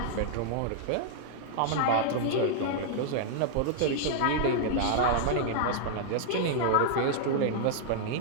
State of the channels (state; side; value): different; both; correlation -0.01